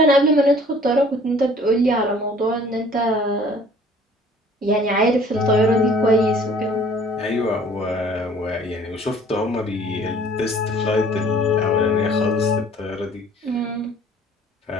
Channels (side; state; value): both; normal; correlation 0.53